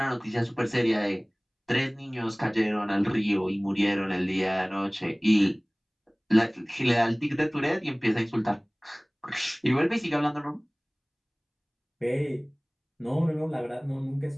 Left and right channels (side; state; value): both; identical; correlation 1.00